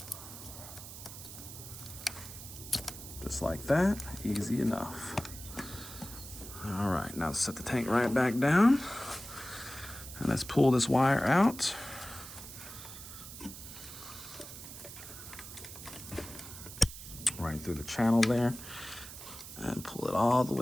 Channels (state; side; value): noise; right; hiss, 12 dB below the sound